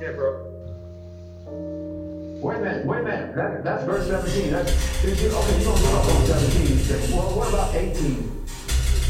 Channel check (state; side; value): identical; both; correlation 1.00